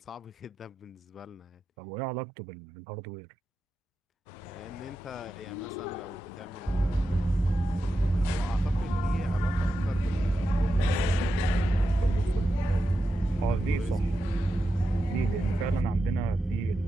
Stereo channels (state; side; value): normal; both; correlation 0.89